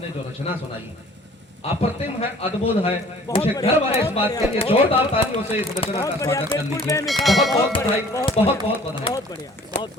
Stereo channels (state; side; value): normal; both; correlation 0.51